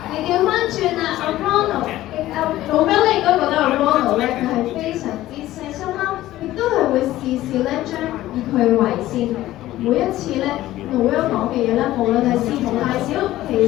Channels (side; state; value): right; quieter; 15.2 dB